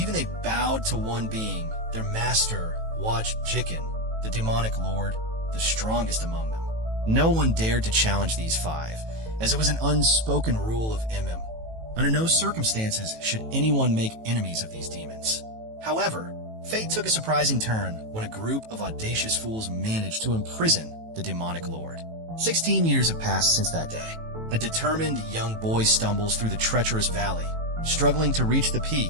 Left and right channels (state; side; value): late; left; 18 ms